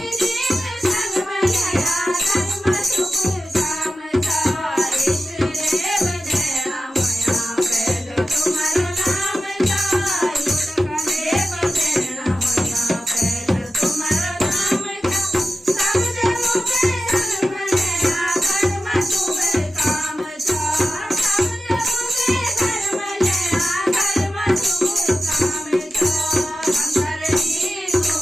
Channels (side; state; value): both; normal; correlation 0.93